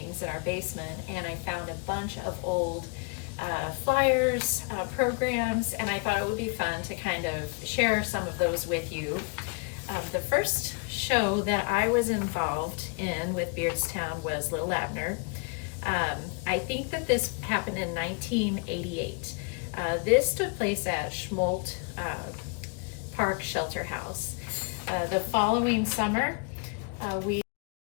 in our basement, and I found a bunch of old flyers, programs, and I thought it would be fun to kind of share some of those with you. The first show that I was involved in with Beardstown was Little Abner. I think that this happened in 1988. This took place at Schmolt Park Shelter House. The following summer, we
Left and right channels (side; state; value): right; quieter; 33.4 dB